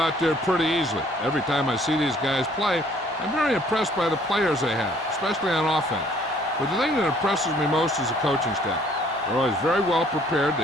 there pretty easily. Every time I see these guys play, I'm very impressed by the players they have, especially on offense. But the thing that impresses me most is the coaching staff. They're always very well prepared.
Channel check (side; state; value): both; normal; correlation 0.59